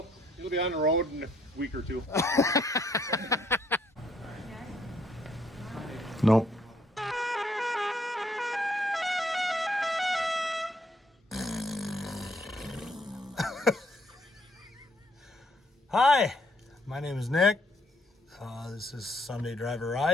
It'll be on the road in a week or two. Nope. Hi, my name is Nick. This is Sunday Driver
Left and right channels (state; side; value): normal; both; correlation 0.68